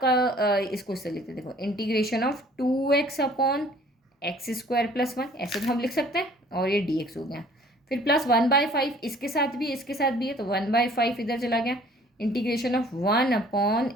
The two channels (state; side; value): normal; both; correlation 0.54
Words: इसको इससे लिखते हैं, देखो इंटीग्रेशन ऑफ 2x/x² + 1, ऐसे तो हम लिख सकते हैं, और ये dx हो गया। फिर प्लस 1/5 इसके साथ भी है, तो 1/5 इधर चला गया, इंटीग्रेशन ऑफ